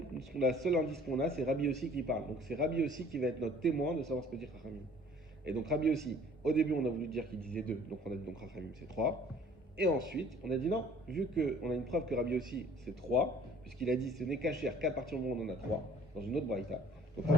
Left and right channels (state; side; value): normal; both; correlation 0.53